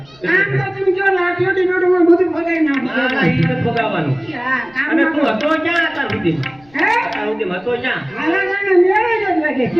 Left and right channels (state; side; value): noise; left; rumble, 30 dB below the sound